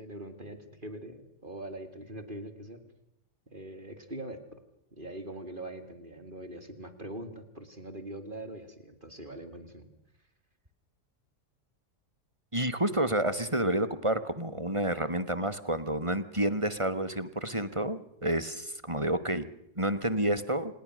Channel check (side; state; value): left; late; 1.5 ms